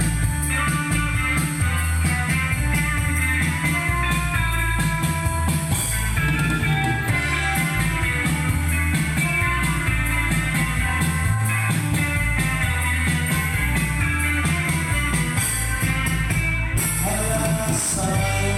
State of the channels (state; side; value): identical; both; correlation 1.00